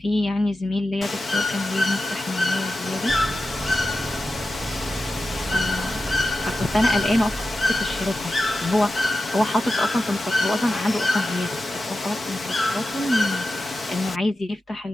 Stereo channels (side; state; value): both; normal; correlation 0.92